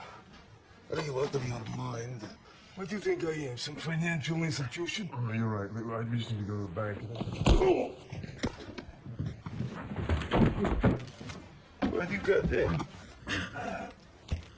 I think you're out of your mind. What do you think I am? Some financial institution? Oh, you're right. I just need to go to the bank. What do you got there?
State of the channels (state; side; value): identical; both; correlation 1.00